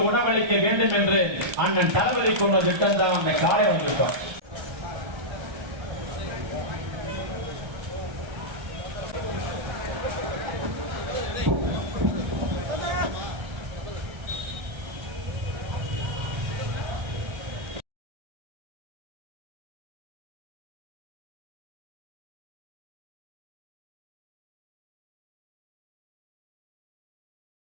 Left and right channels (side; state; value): left; late; 1.3 ms